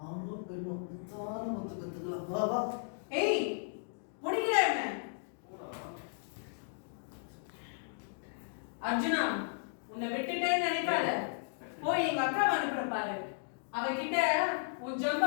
ஆணோ பெண்ணோ முத்தான முத்து கத்துக்கலாம். வா வா. ஏய், முடிக்கிறா என்ன? அர்ஜுனா, உன்னை விட்டுட்டேன்னு நினைக்காத. போய் எங்க அக்கா அனுப்புற பாரு. அவகிட்ட உன்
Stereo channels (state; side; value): silent; right; digital silence